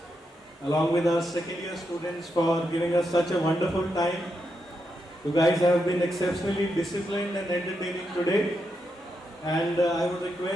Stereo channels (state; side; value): normal; both; correlation 0.83